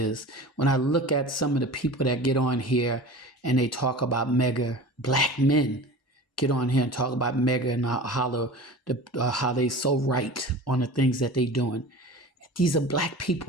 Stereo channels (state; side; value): normal; both; correlation 0.36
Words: When I look at some of the people that get on here and they talk about mega black men, get on here and talk about mega and how they so right on the things that they doing. These are black